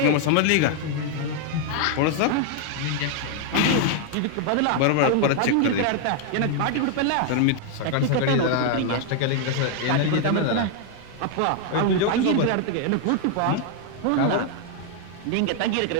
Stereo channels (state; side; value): different; both; correlation 0.00